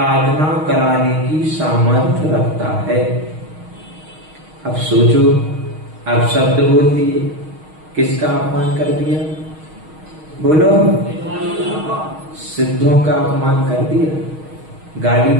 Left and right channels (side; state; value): left; late; 6.4 ms